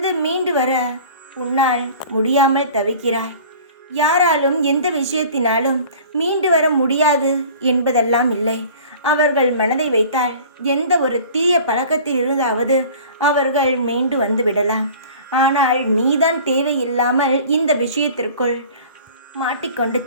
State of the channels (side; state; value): both; inverted; correlation -0.44